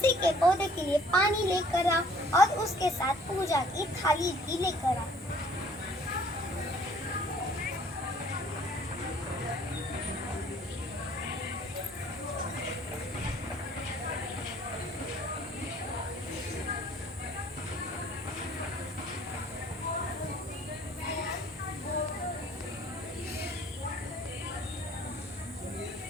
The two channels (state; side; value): normal; both; correlation 0.57